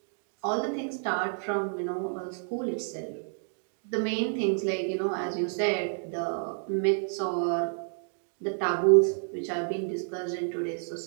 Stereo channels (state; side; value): silent; left; 58 dB below the other